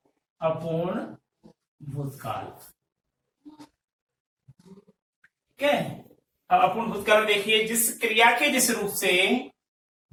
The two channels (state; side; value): identical; both; correlation 1.00